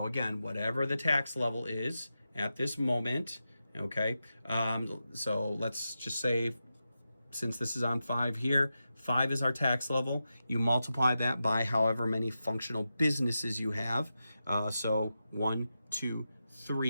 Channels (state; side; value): inverted; both; correlation -0.90